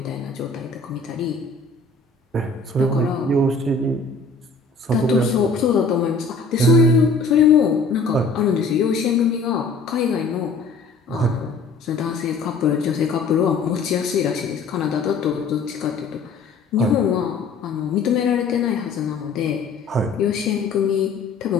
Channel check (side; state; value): right; quieter; 4.1 dB